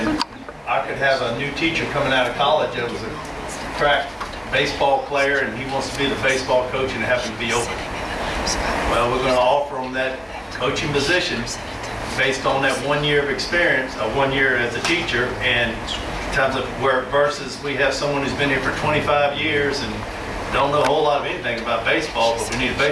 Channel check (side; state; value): both; identical; correlation 1.00